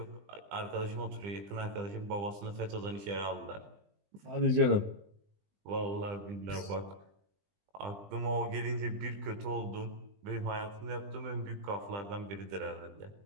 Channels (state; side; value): late; left; 20 ms